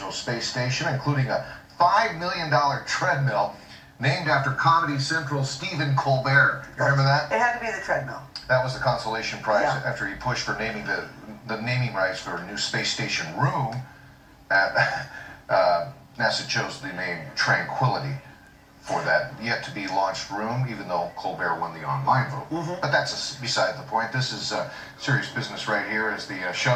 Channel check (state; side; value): identical; both; correlation 1.00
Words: Space Station, including a $5 million treadmill named after Comedy Central's Stephen Colbert. You remember that? It had to be the treadmill. That was the consolation prize after he pushed for naming the naming rights for a new space station room. NASA chose the name Tranquility for that yet-to-be launched room, even though Colbert won the online vote. But that's beside the point. This is serious business right here, as the